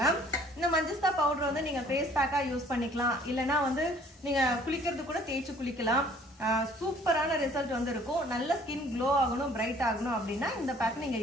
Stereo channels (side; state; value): both; normal; correlation 0.56